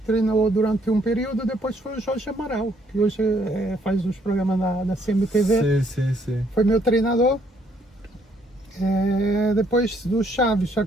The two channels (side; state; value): both; normal; correlation 0.68